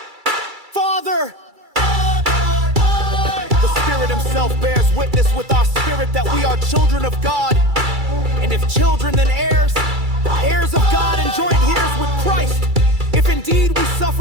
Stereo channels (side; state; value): left; late; 2.3 ms